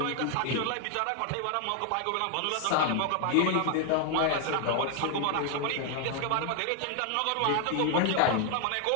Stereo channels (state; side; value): different; both; correlation 0.00